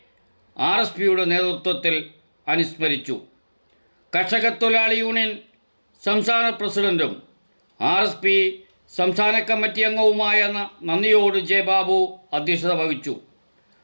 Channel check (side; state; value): both; inverted; correlation -1.00